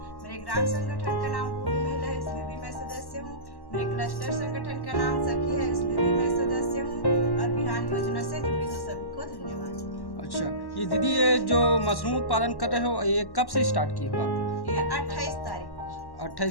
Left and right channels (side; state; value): right; late; 1.1 ms